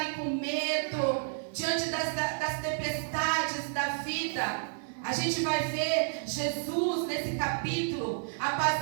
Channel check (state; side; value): silent; left; digital silence